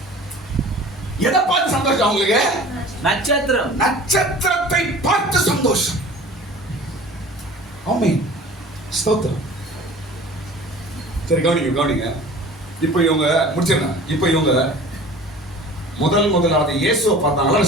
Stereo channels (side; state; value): both; normal; correlation 0.43